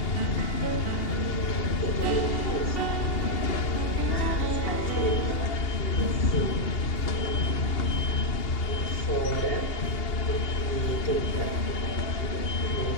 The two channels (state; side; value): late; right; 2.8 ms